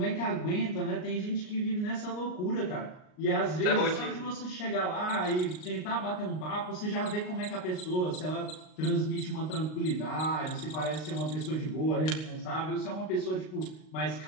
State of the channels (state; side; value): late; right; 38 ms